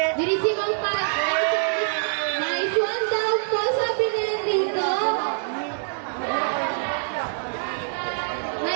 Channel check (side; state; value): left; silent; digital silence